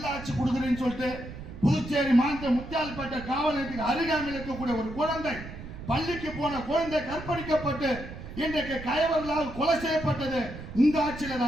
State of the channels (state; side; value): noise; right; rumble, 12 dB below the sound